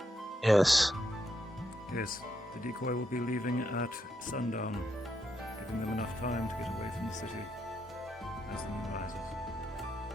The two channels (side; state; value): both; normal; correlation 0.80